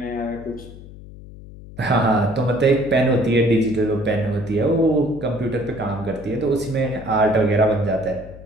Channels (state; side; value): noise; left; hum, 17 dB below the sound